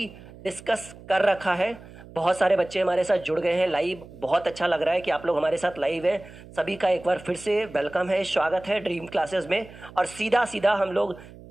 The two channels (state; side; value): noise; right; hum, 19 dB below the sound